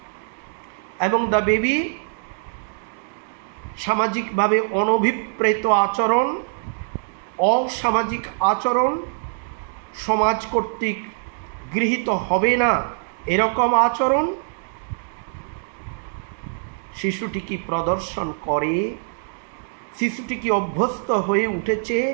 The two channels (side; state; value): left; silent; digital silence